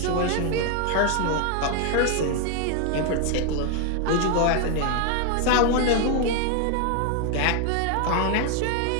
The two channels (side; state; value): both; different; correlation 0.00